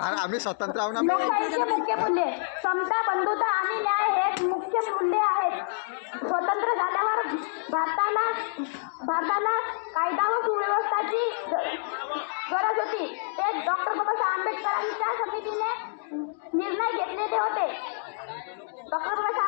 आम्ही स्वतंत्र आहोत ना। लोकशाहीचे मुख्य मूल्ये समता, बंधुता आणि न्याय हे मुख्य मूल्ये आहेत। स्वतंत्र झाल्यावर भारताला कायदा व सुव्यवस्थेची गरज होती। ते डॉक्टर बाबासाहेब आंबेडकरांच्या समितीने निर्णय घेतलेले होते। डॉक्टर बाबासाहेब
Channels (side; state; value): right; silent; digital silence